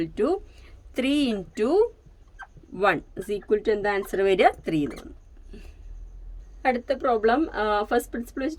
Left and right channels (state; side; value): identical; both; correlation 1.00